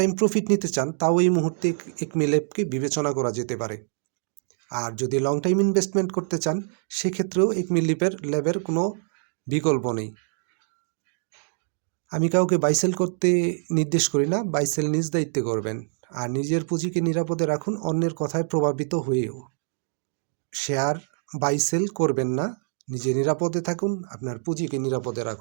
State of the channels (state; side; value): silent; left; digital silence